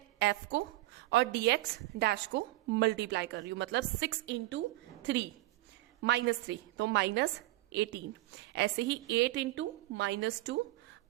f को और dx डैश को मल्टीप्लाई कर रही हूं, मतलब 6 इंटू 3 माइनस 3, तो माइनस 18। ऐसे ही 8 into minus 2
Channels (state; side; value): quieter; left; 18.2 dB